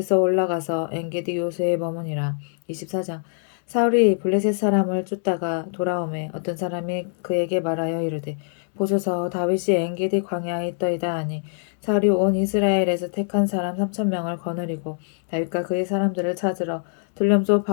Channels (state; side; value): silent; right; digital silence